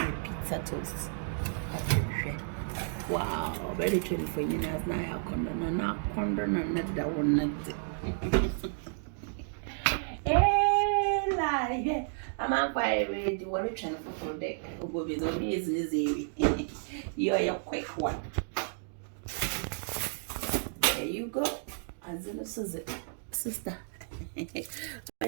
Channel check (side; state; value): left; silent; digital silence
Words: pizza toast. Wow, very true for you as na ya kondo na kondo na da one. Eh, lie. I'm on fire with the water channel for deck. Go with the business. You're a quick one. There you go. As in a sister.